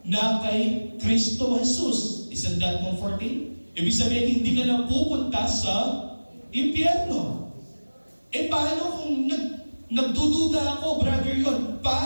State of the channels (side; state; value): both; inverted; correlation -1.00